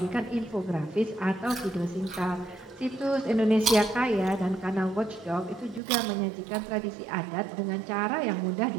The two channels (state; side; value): drops out; left; at 5.8 s